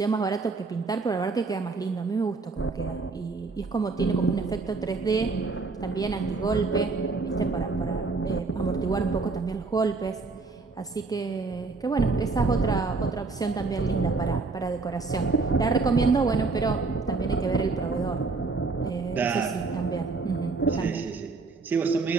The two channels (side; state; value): left; quieter; 4.0 dB